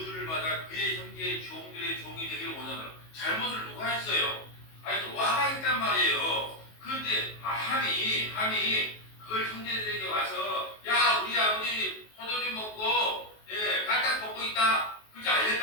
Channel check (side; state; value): right; late; 19 ms